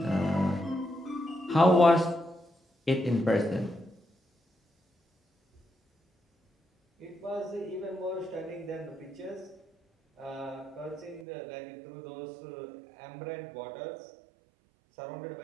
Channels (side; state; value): left; drops out; at 11.2 s